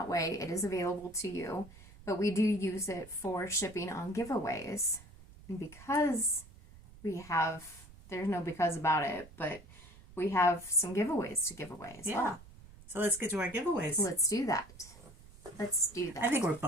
way, it is available to you. But we do use it for shipping on giveaways. And because there's no because about it, but we have some giveaways to give away as well. So let's get to our giveaways. Let's do that. I think we're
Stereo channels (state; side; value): noise; right; rumble, 20 dB below the sound